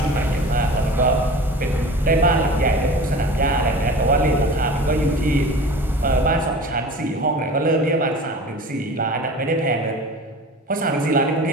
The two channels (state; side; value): normal; both; correlation 0.38